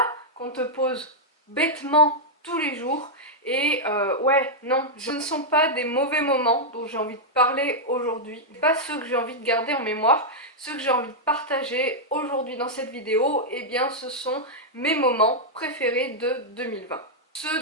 ?» qu'on te pose bêtement tous les jours. Et ouais, non, ce ne sont pas des mauvais moments dont j'ai envie de parler aujourd'hui, pas ceux que j'ai envie de garder en mémoire, ceux que j'ai envie de partager aujourd'hui dans cette vidéo, eh bien ce sont mes moments préférés de 2020.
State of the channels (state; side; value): normal; both; correlation -0.05